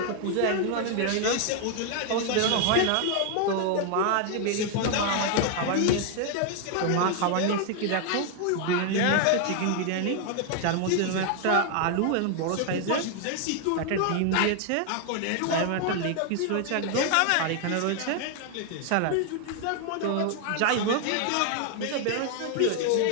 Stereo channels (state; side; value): different; both; correlation 0.00